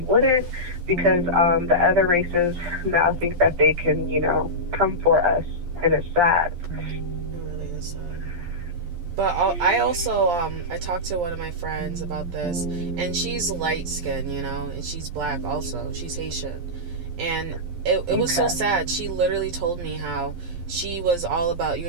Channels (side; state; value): left; late; 11 ms